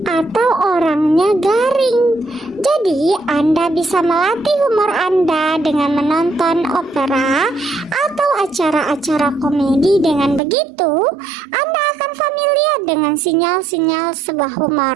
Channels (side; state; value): left; drops out; at 10.4 s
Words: Atau orangnya garing. Jadi Anda bisa melatih humor Anda dengan menonton opera atau acara-acara komedi. Dengan begitu, Anda akan familiar dengan sinyal-sinyal sebuah